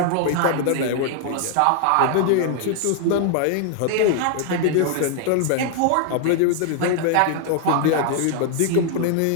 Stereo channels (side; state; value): both; different; correlation 0.00